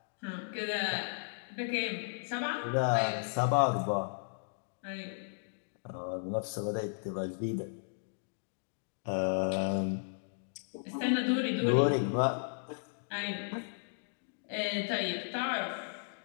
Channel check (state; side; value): silent; right; digital silence